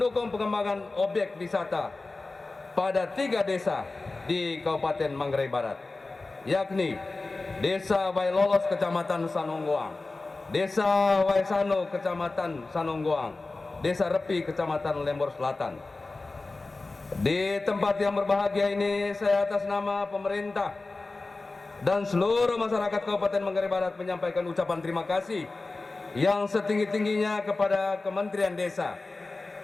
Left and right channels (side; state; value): right; quieter; 3.4 dB